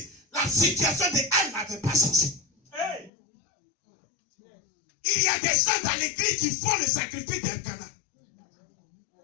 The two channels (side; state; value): right; drops out; at 3.1 s